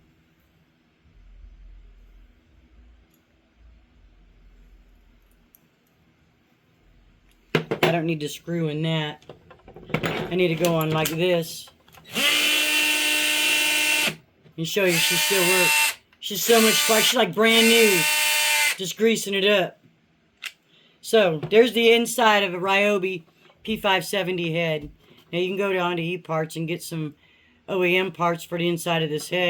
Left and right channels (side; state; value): both; identical; correlation 1.00